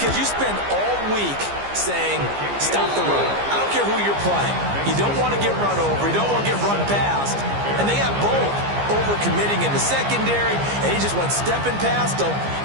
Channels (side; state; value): left; late; 15 ms